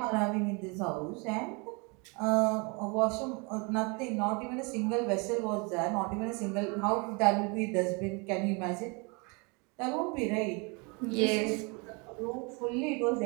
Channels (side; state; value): left; quieter; 30.9 dB